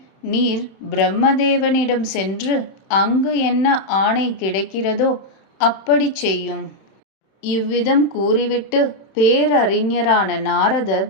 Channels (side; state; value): right; late; 31 ms